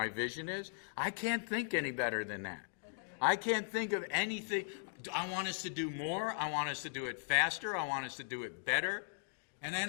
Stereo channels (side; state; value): right; silent; digital silence